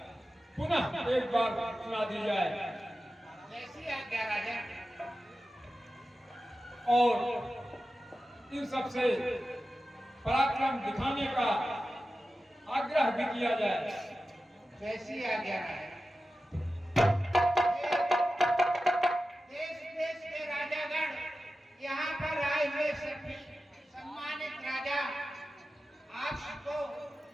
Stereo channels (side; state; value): both; normal; correlation 0.94